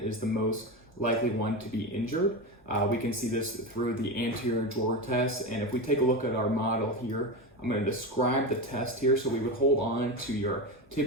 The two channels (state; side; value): normal; both; correlation 0.19